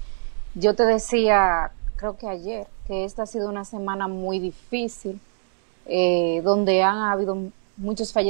Yo te decía, creo que ayer, que esta ha sido una semana muy difícil, donde han habido muchos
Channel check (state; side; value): silent; left; digital silence